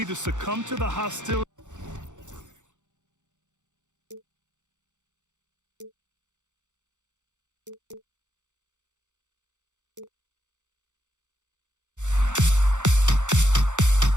succumb to the hostility.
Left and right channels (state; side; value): late; left; 0.85 ms